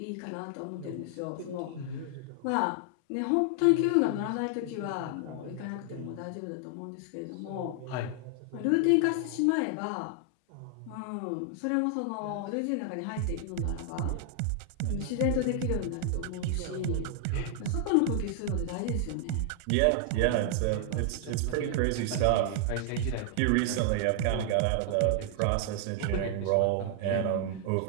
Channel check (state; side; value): different; both; correlation 0.00